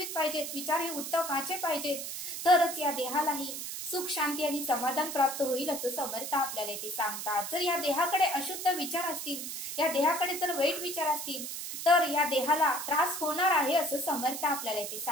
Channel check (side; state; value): right; noise; hiss, 6 dB below the sound